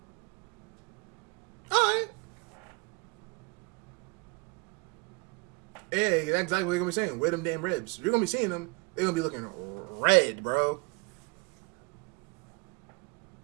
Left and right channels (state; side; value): quieter; left; 29.9 dB